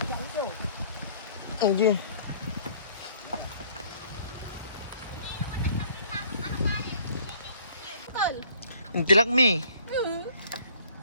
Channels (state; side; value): inverted; both; correlation -0.57